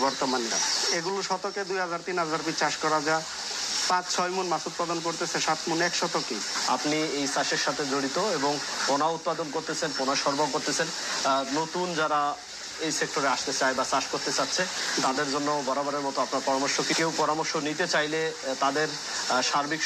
বর্তমানে। এগুলো শতকে 2000-3000 পিস চাষ করা যায়, 5-6 মণ মাছ উৎপাদন করতেছে, 7 মণ 1 শতকে। আপনি এই চাষের সাথে জড়িত এবং পোনা উৎপাদন করতেছেন, পোনা সরবরাহ করতেছেন। নতুন যারা এই সেক্টরে আসতে চায় বা চাষ করতে চাচ্ছে তাদের জন্য বরাবরের মতো আপনার পরামর্শ কি? কেউ পরামর্শ নিতে চাইলে তাদের সার্বিক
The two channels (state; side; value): identical; both; correlation 1.00